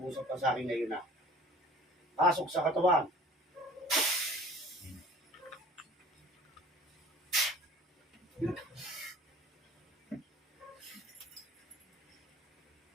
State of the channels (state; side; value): normal; both; correlation 0.47